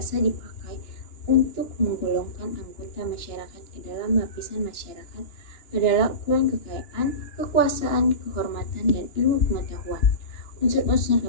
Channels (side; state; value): right; late; 2.9 ms